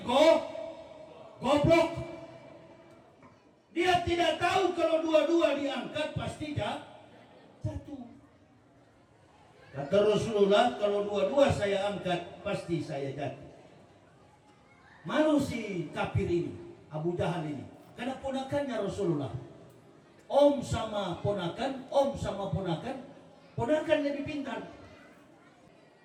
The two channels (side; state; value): both; identical; correlation 1.00